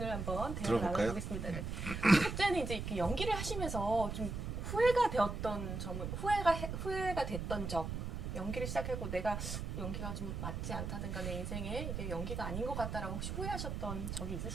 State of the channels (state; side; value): noise; right; rumble, 4 dB below the sound